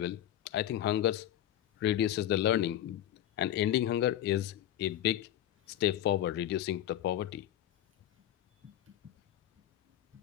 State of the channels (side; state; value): right; quieter; 12.1 dB